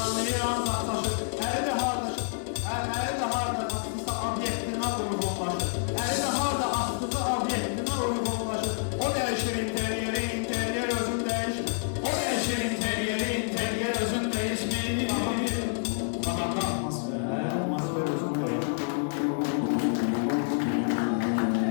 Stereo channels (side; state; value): right; silent; digital silence